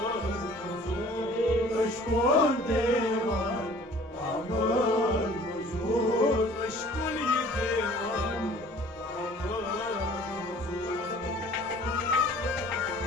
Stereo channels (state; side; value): normal; both; correlation 0.50